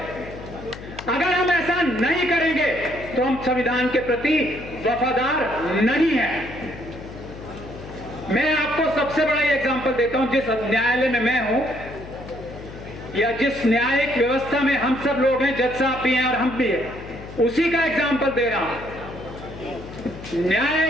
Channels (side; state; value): left; noise; hum, 14 dB below the sound